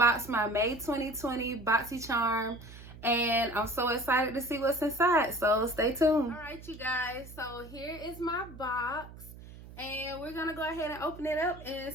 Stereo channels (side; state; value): right; noise; hum, 16 dB below the sound